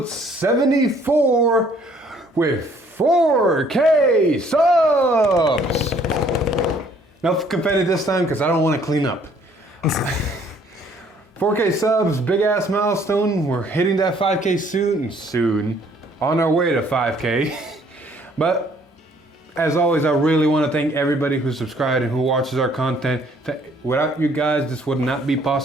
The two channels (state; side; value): normal; both; correlation 0.61